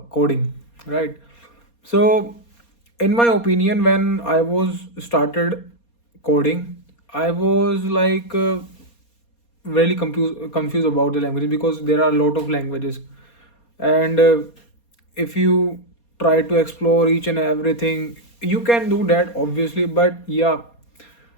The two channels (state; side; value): late; right; 4.3 ms